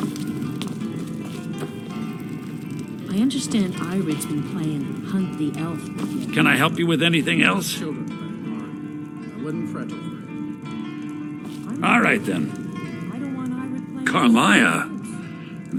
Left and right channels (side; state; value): both; identical; correlation 1.00